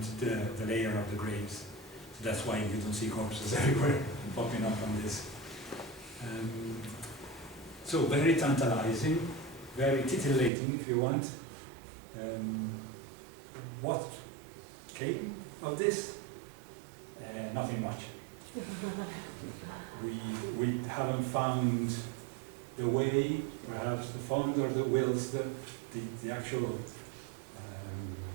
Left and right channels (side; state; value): left; drops out; at 10.5 s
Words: the layer of the graves. So that's why you don't see corpses everywhere popping up on this. So very tantalizing, very titillating if you want. What came of this? Nothing much. We haven't found the way, perhaps the funds or the wills, the actual,